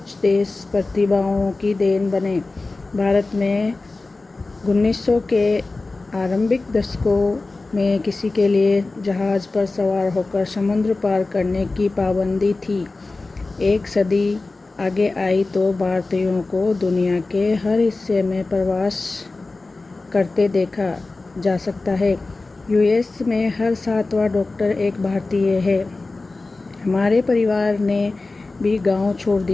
देश प्रतिभाओं की देन बने। भारत में 1900 के आरंभिक दशकों में किसी के लिए जहाज़ पर सवार होकर समुद्र पार करने की पाबंदी थी। एक सदी आगे आई तो भारतीयों को दुनिया के हर हिस्से में प्रवास करते देखा जा सकता है। यूएस में हर 7वां डॉक्टर एक भारतीय है। हमारे परिवार ने भी गांव छोड़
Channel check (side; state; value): right; quieter; 3.4 dB